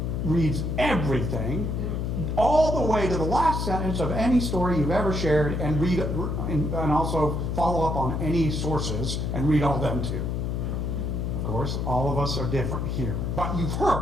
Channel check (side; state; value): left; noise; hum, 1 dB below the sound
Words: reads everything, all the way to the last sentence of any story you've ever shared, and read and also follow up on any sources and read all them too. Of course, all of us are different here. But you've